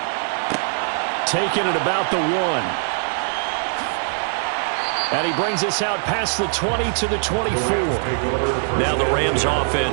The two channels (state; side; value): silent; left; digital silence